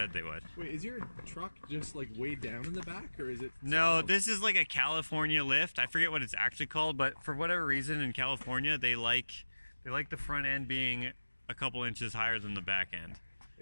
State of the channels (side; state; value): both; inverted; correlation -1.00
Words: they would. Wait, is your truck just like way down in the back, or is it? No, this is like a California lift. I forget what it's actually called, but for whatever reason in California, they like the front end being a couple inches higher than the back end.